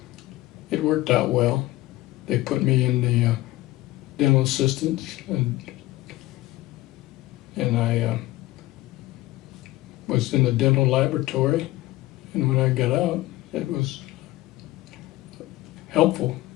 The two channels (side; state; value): right; quieter; 17.4 dB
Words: it worked out well. They put me in the dental assistants, and I was in the dental laboratory, and when I got out, it was helpful